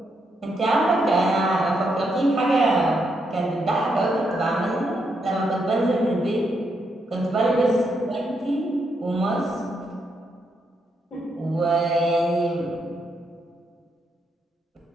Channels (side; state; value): both; normal; correlation 0.79